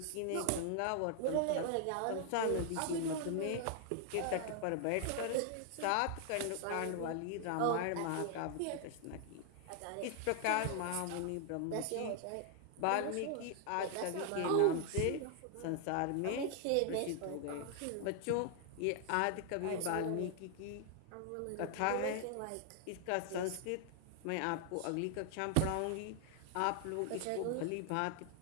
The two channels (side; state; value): both; different; correlation 0.00